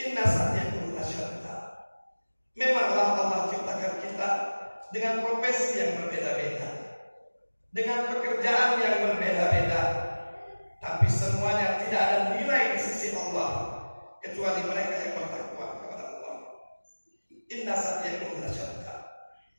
Inna sa'yakum lasyatta. Memanglah Allah ciptakan kita dengan profesi yang berbeda-beda, dengan pekerjaan yang berbeda-beda, tapi semuanya tidak ada nilai di sisi Allah kecuali mereka yang bertakwa kepada Allah. Inna sa'yakum lasyatta.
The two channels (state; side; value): inverted; both; correlation -1.00